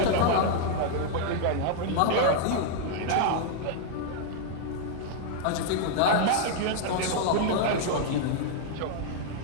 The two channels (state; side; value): different; both; correlation -0.01